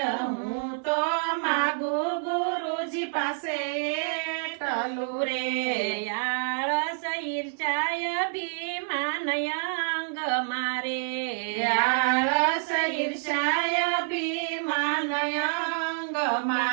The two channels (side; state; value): left; silent; digital silence